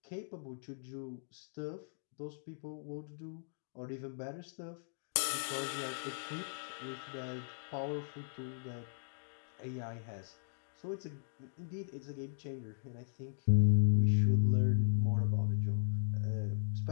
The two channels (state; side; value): silent; right; digital silence